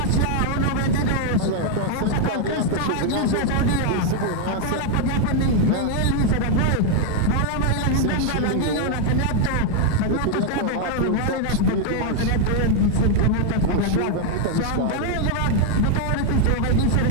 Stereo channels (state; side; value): different; both; correlation 0.00